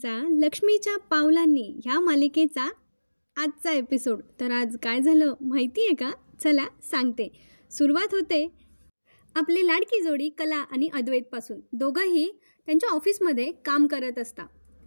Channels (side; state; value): both; inverted; correlation -1.00